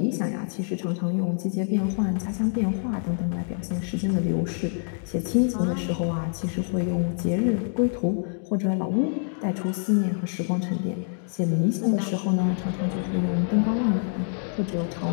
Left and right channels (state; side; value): silent; right; 61 dB below the other